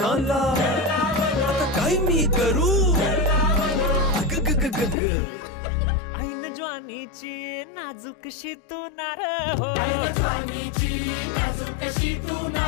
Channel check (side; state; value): right; drops out; at 5.0 s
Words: आता काय मी करू अग ग ग ग ग ऐन ज्वानीची नाजूकशी तू नार हो